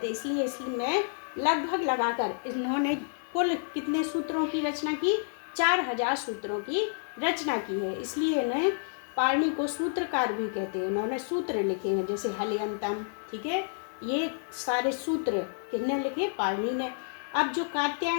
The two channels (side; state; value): right; silent; digital silence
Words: इसलिए मैं लगभग लगाकर इन्होंने कुल कितने सूत्रों की रचना की, 4000 सूत्रों की रचना की है। इसलिए इन्हें पाणि को सूत्रकार भी कहते हैं। इन्होंने सूत्र लिखे हैं, जैसे हलियंतम, ठीक है। ये सारे सूत्र किसने लिखे, पाणि ने। अब जो